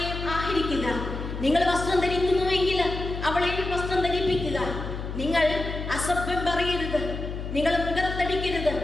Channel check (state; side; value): noise; left; hum, 6 dB below the sound